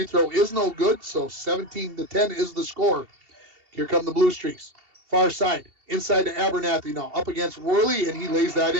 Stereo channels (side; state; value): left; late; 2.7 ms